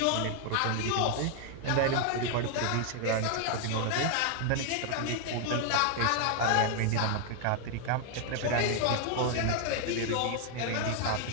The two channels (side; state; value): both; different; correlation 0.00